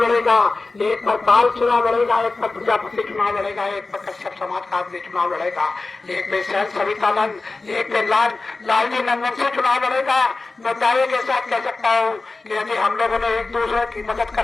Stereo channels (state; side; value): quieter; right; 3.6 dB